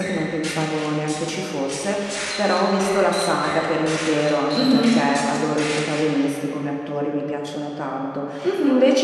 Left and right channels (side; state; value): both; identical; correlation 1.00